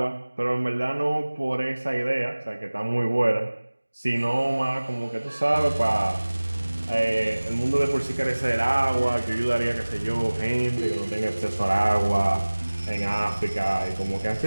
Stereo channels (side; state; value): both; inverted; correlation -1.00